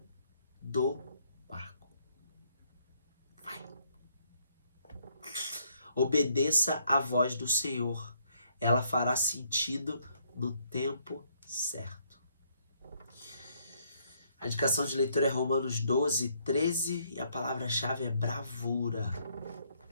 do barco. Vai. Obedeça à voz do Senhor. Ela fará sentido no tempo certo. A indicação de leitura é Romanos 12, 13 e a palavra-chave é bravura.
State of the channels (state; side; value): inverted; both; correlation -0.70